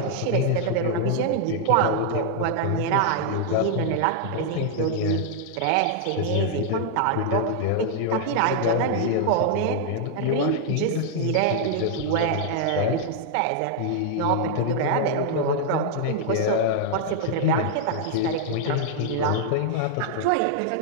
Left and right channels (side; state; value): both; different; correlation -0.01